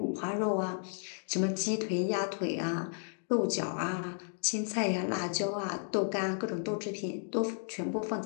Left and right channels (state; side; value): silent; right; digital silence